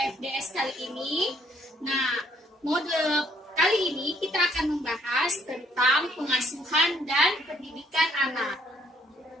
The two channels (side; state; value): both; normal; correlation 0.67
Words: FDS kali ini. Nah, mode kali ini kita akan membahas tentang pengasuhan dan pendidikan anak.